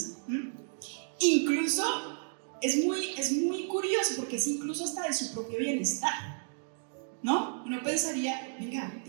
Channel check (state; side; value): silent; left; digital silence